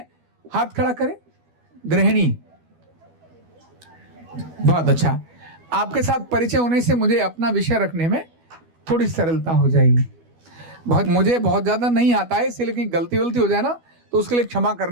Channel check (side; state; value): left; late; 12 ms